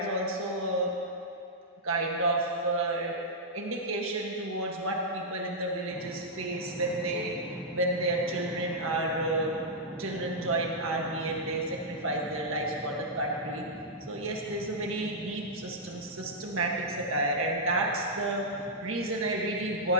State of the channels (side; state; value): both; normal; correlation -0.08